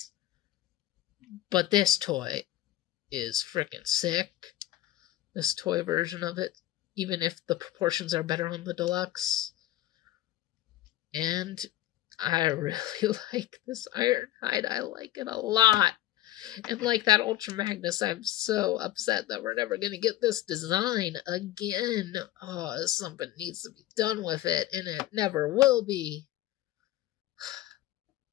But this toy is freaking sick. This toy version of it, even if the proportions are better on the deluxe. And I really like this Ironhide. I like it a lot. And like that Ultra Magnus, I'm so upset that we're never going to get this design again. Oh, something needs to be done with it, and it never will be.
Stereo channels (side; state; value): right; quieter; 14.5 dB